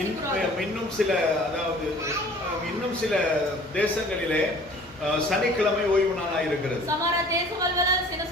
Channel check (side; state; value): both; normal; correlation 0.49